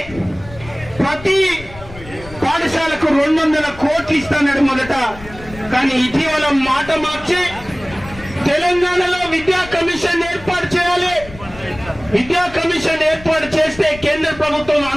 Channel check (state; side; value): noise; left; rumble, 17 dB below the sound